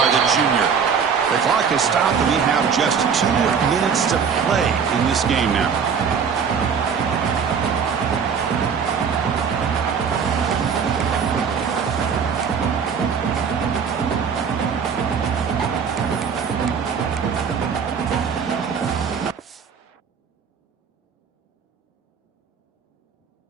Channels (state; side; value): quieter; left; 6.5 dB